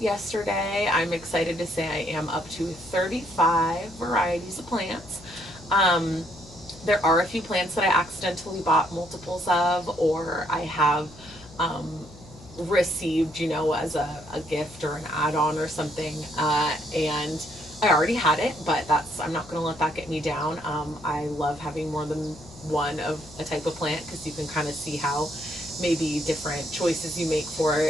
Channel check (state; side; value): noise; left; hum, 20 dB below the sound